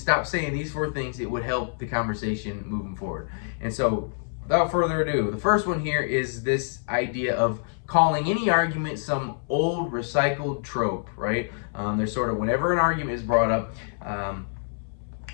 stop saying these 4 things, it would help the conversation moving forward. And so without further ado, the first one here is this idea of calling any argument some old recycled trope, right? There's sort of, whenever an argument is brought up,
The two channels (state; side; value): silent; right; 61 dB below the other